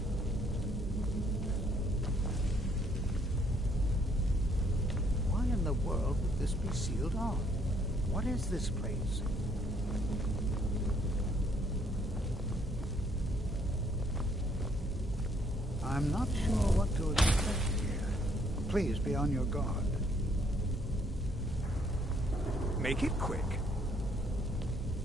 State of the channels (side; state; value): both; normal; correlation 0.66